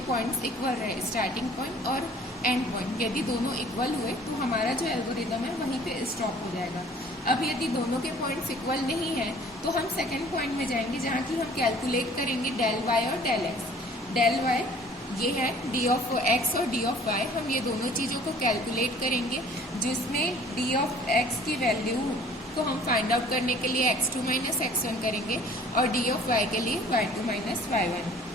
पॉइंट्स इक्वल रहे, स्टार्टिंग पॉइंट और एंड पॉइंट। यदि दोनों इक्वल हुए तो हमारा जो एल्गोरिदम है वहीं पे स्टॉप हो जाएगा। अब यदि दोनों के पॉइंट्स इक्वल नहीं है तो हम सेकेंड पॉइंट में जाएंगे, जहाँ की हम कैलकुलेट करेंगे डेल y और डेल x। डेल y ये है d ऑफ x और d ऑफ y, हम ये दोनों चीज़ों को कैलकुलेट करेंगे, जिसमें d ऑफ x की वैल्यू को हम फाइंड आउट करने के लिए x2 माइनस x1 करेंगे और d ऑफ y के लिए y2 माइनस y1।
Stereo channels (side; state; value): both; normal; correlation 0.52